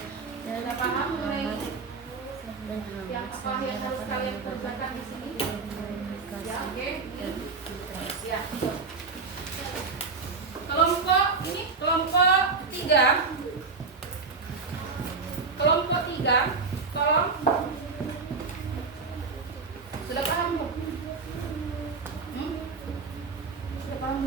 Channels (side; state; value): left; quieter; 4.6 dB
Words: Sudah paham mulai yang apa yang harus kalian kerjakan di sini? Ya oke. Ya. Kelompok ini kelompok 3. Kelompok 3 tolong. Sudah paham belum? Sudah paham